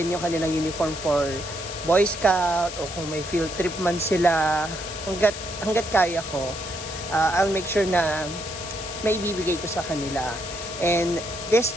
yung kanilang uniform for Boy Scout o kung may field trip man sila. Hanggat kaya ko. I'll make sure na may ibibigay ko sa kanila. And this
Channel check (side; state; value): left; noise; hiss, 9 dB below the sound